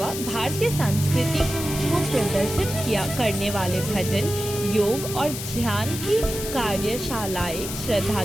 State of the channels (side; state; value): left; noise; hiss, 7 dB below the sound